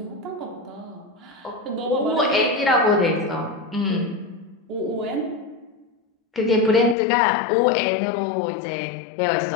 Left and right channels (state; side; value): drops out; right; at 7.0 s